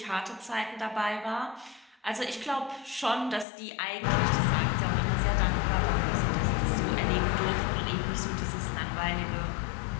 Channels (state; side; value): drops out; right; at 3.5 s